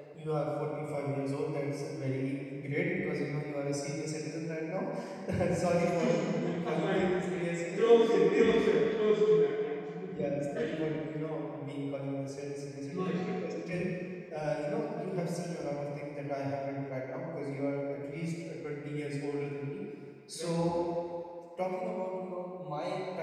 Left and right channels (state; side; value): identical; both; correlation 1.00